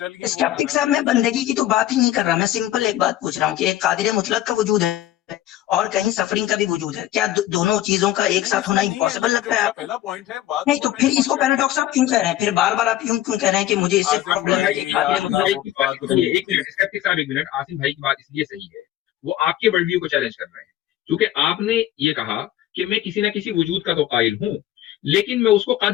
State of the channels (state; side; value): quieter; right; 13.4 dB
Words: اسکیپٹک صاحب، میں بندگی کی تو بات ہی نہیں کر رہا، میں سمپل ایک بات پوچھ رہا ہوں کہ ایک قادر مطلق کا وجود ہے اور کہیں سفرنگ کا بھی وجود ہے، کیا دونوں چیزوں کا ایک ساتھ ہونا امپاسبل لگتا ہے آپ؟ پہلا پوائنٹ ہے، نہیں تو پھر اس کو پیراڈاکس آپ کیوں کہہ رہے ہیں؟ پھر بار بار آپ کیوں کہہ رہے ہیں کہ مجھے اس سے پرابلم ہے کہ قادر مطلق؟ ایک منٹ، آصم بھائی کی بات اس لیے صحیح ہے، وہ آپ کے ورلڈ ویو کو چیلنج کر رہے ہیں، کیونکہ آپ نے یہ کہا کہ میں کسی نہ کسی وجود کا تو قائل ہوں، لیکن میں اس کو